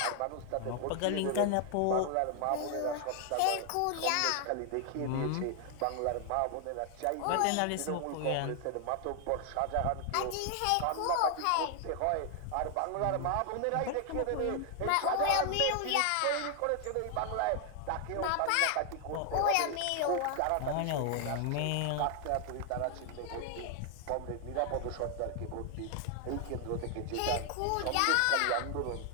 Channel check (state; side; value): different; both; correlation 0.00